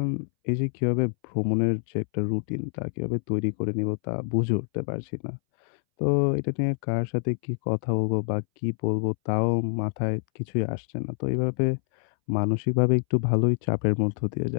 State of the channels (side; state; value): right; silent; 61 dB below the other